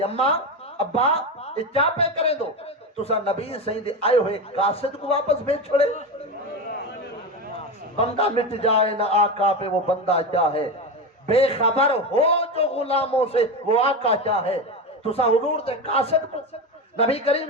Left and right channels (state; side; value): normal; both; correlation 0.18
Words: اماں ابا یہ کیا پہ کریں دو تسا نبی صحیح دے آئے ہوئے قاصد کو واپس بھیج چھوڑے بندہ مٹ جائے نہ آقا پہ وہ بندہ کیا ہے بے خبر ہو جو غلاموں سے وہ آقا کیا ہے تسا حضور دے قاصد کو نبی